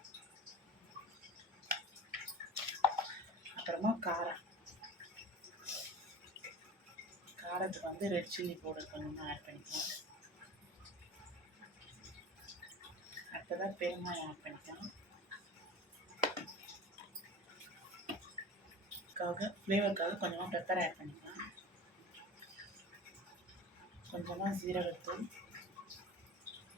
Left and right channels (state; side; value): normal; both; correlation 0.37